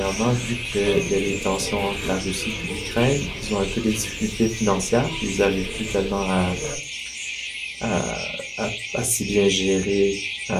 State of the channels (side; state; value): both; identical; correlation 1.00